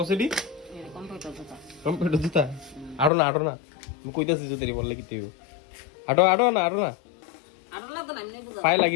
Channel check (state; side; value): drops out; right; at 3.1 s